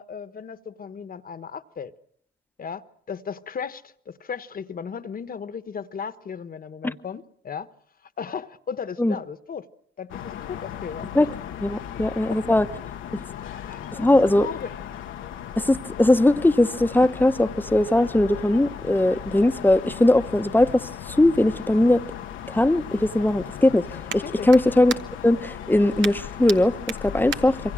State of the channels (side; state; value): both; normal; correlation 0.91